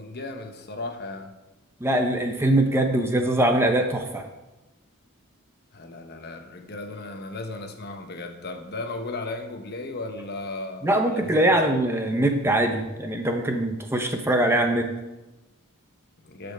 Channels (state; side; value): normal; both; correlation 0.49